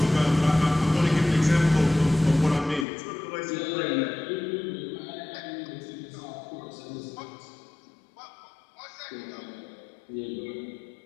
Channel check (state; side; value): drops out; right; at 2.9 s